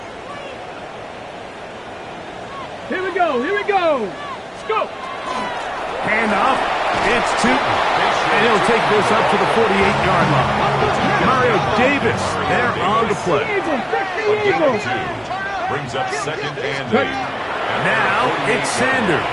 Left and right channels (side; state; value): both; identical; correlation 1.00